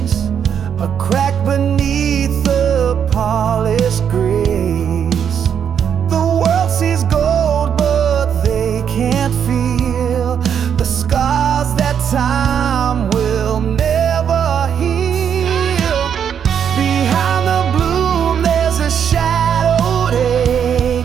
a crack beneath the polished grace. The world sees gold, but they can't feel the scars that time will never heal. Behind the bloom there's a shadowed ache,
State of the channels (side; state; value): left; quieter; 8.1 dB